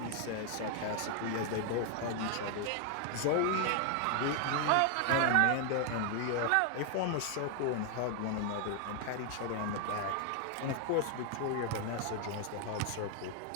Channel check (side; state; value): both; different; correlation 0.00